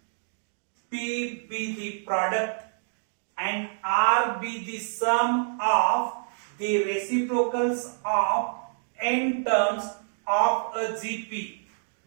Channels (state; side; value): silent; left; digital silence